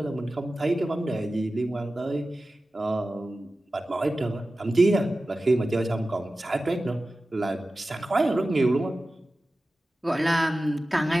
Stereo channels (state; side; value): normal; both; correlation 0.95